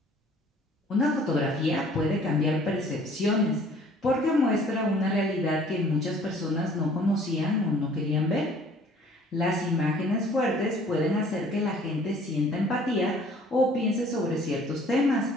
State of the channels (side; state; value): both; normal; correlation 0.54